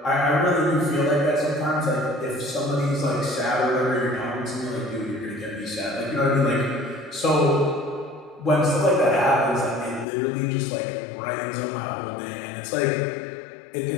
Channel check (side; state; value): right; drops out; at 10.1 s